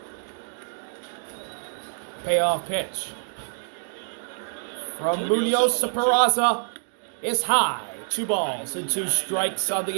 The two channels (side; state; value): left; silent; digital silence